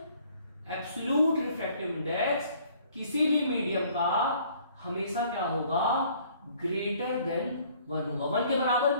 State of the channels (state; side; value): inverted; both; correlation -0.59